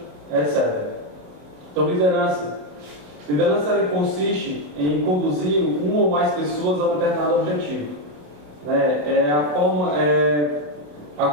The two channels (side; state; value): left; late; 27 ms